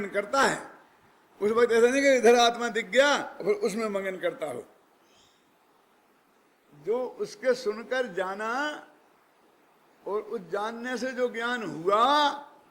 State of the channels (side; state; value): both; identical; correlation 1.00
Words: करता है। उस वक्त ऐसा नहीं कि इधर आत्मा दिख गया और उसमें मगन करता हो। जो उसके सुनकर जाना और उस जानने से जो ज्ञान हुआ,